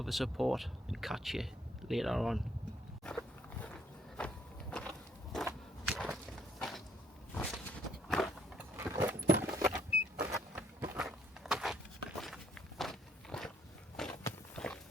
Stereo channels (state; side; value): normal; both; correlation 0.67